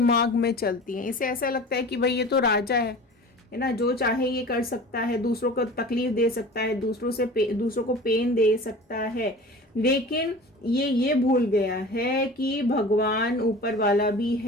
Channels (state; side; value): normal; both; correlation 0.39